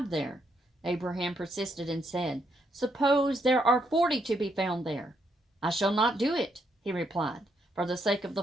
there. Abraham persisted and said, Suppose there are 40 to be found there. I shall not do it, he replied, for the sake of the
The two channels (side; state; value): both; normal; correlation 0.76